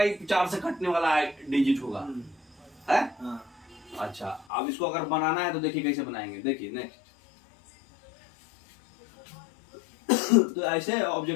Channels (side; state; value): right; drops out; at 4.5 s